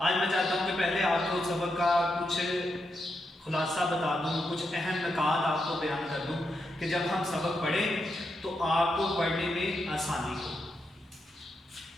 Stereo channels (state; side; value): normal; both; correlation 0.84